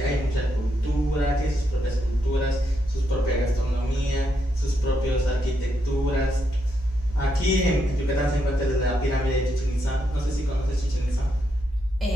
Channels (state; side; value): normal; both; correlation 0.80